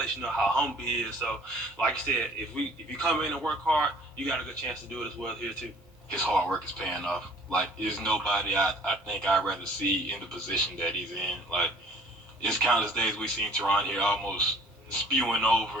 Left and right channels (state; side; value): normal; both; correlation 0.53